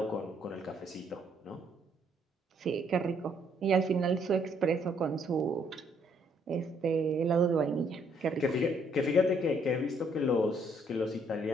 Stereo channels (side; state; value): both; normal; correlation 0.68